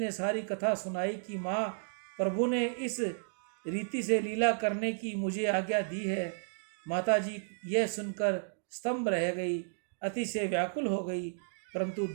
सारी कथा सुनाई कि माँ, प्रभु ने इस रीति से लीला करने की मुझे आज्ञा दी है। माता जी यह सुनकर स्तंभ रह गई, अतिशय व्याकुल हो गई, परंतु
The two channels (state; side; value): silent; left; digital silence